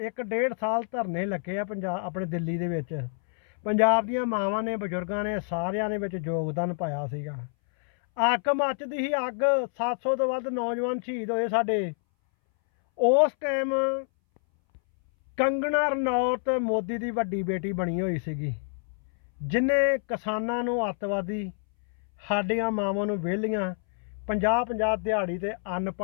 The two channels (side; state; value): right; silent; 60 dB below the other